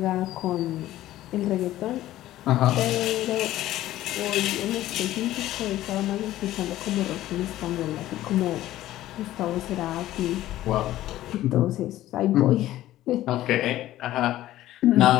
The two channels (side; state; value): right; quieter; 14.5 dB